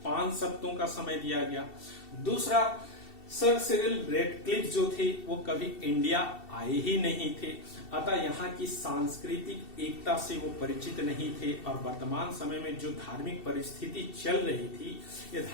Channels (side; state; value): right; late; 2.7 ms